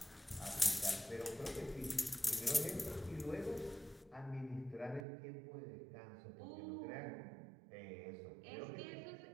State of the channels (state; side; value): drops out; left; at 5.0 s